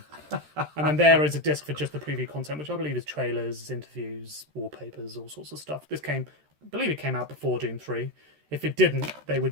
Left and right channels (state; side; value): late; left; 13 ms